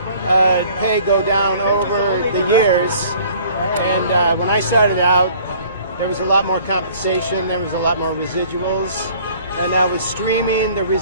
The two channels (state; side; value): inverted; both; correlation -0.53